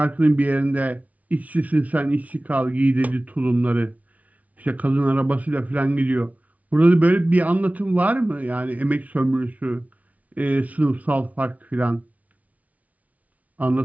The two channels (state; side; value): late; left; 0.070 ms